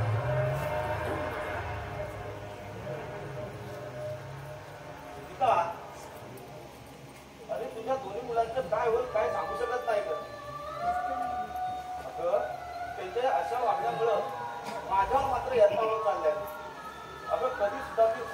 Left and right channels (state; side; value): identical; both; correlation 1.00